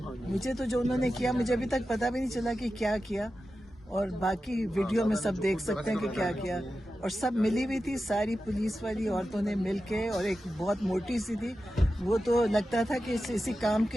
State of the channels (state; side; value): normal; both; correlation 0.92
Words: مجھے تو جو انہوں نے کیا, مجھے ابھی تک پتہ بھی نہیں چلا کہ کیا کیا. اور باقی ویڈیو میں سب دیکھ سکتے ہیں کہ کیا کیا. اور سب ملی ہوئی تھی, ساری پولیس والی عورتوں نے مل کے, اور ایک بہت موٹی سی تھی, وہ تو لگتا تھا کہ اسی کام